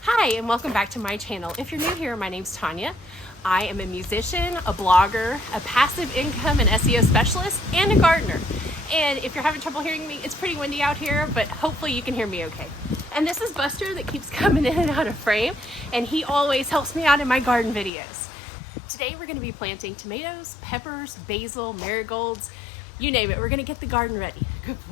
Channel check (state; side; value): drops out; right; at 17.9 s